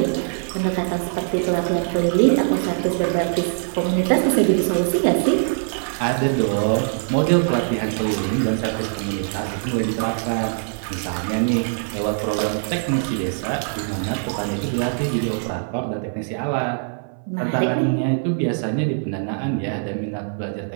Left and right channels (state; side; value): silent; left; 57 dB below the other